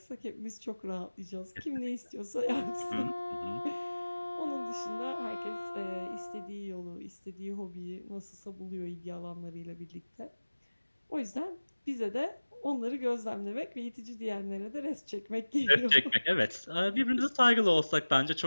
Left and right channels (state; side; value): inverted; both; correlation -1.00